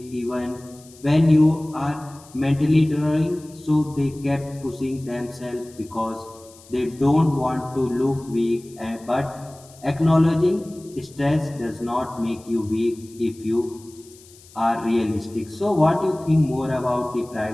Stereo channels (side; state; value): left; noise; hiss, 24 dB below the sound